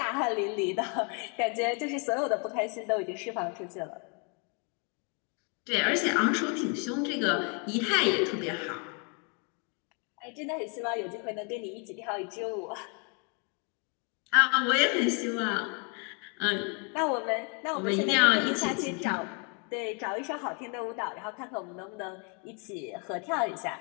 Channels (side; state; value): right; quieter; 36.2 dB